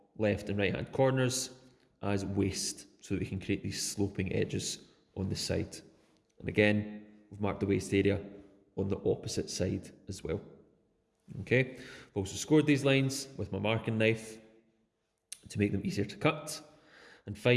left and right hand corners as waste, so that we can create these sloping edges on the side. And again, we've marked the waste area on the opposite side as well. Okay, I've also scored these lines with my marking knife to make them easier to cut. And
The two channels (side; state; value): both; identical; correlation 1.00